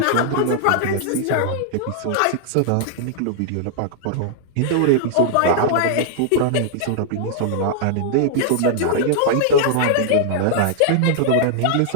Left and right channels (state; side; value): different; both; correlation -0.01